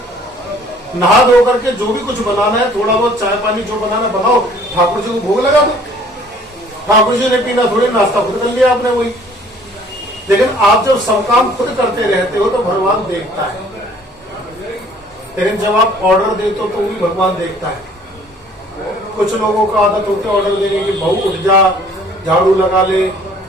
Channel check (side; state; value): both; normal; correlation 0.55